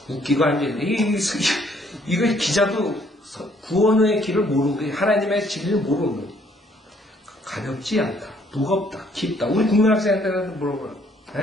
웃기고 앉아있네. 이거 기자도 구원의 길을 모르는 거예요. 하나님의 진리를 모르는 거예요. 가볍지 않다, 무겁다, 깊다. 우리 국민학생한테 물어봐요.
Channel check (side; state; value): both; normal; correlation 0.65